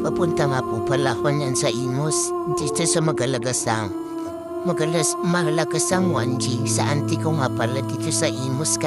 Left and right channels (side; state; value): both; identical; correlation 1.00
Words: nga po pala ako niyan sa Imus, dito sa Malagasang 1G sa auntie ko nga pala dito sa Imus,